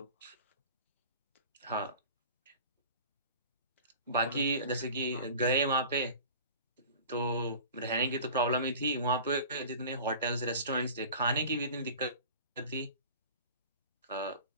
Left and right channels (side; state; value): both; inverted; correlation -0.41